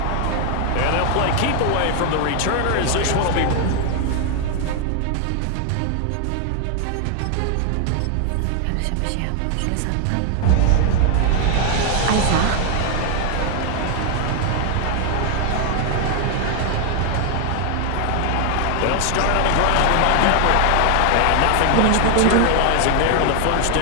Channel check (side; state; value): both; different; correlation 0.00